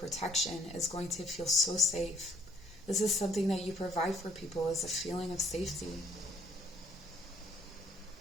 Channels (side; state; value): both; normal; correlation 0.61